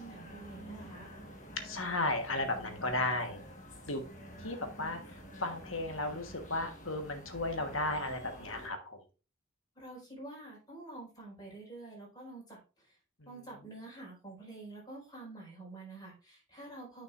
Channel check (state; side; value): normal; both; correlation -0.17